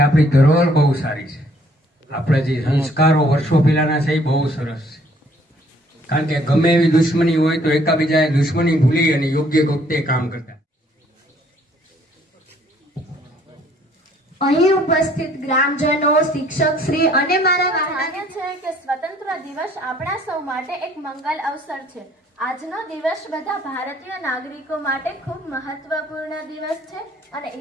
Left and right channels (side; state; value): both; normal; correlation 0.61